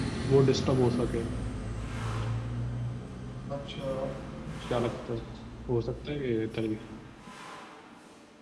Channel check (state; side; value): identical; both; correlation 1.00